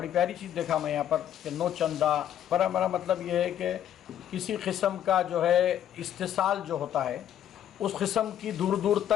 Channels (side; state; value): right; quieter; 10.6 dB